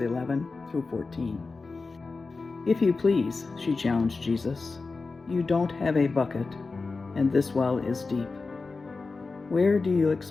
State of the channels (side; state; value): right; quieter; 4.0 dB